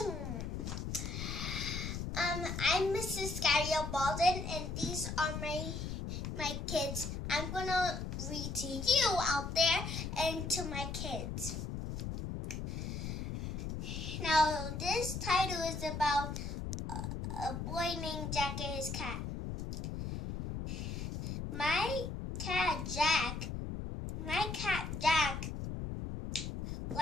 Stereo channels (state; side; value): noise; left; rumble, 4 dB below the sound